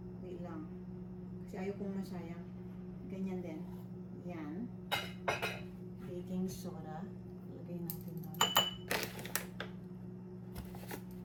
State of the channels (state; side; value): identical; both; correlation 1.00